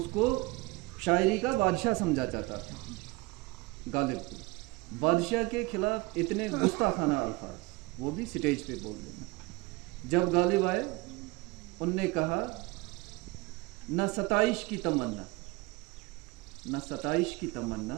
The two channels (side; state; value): left; quieter; 23.5 dB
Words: शायरी का बादशाह समझा जाता था गालिब को। बादशाह के खिलाफ इतने गुस्ताखाना अल्फाज, वो भी स्टेज पे बोल देना। जब गालिब आए उनने कहा न सताइश की तमन्ना, न सताइश की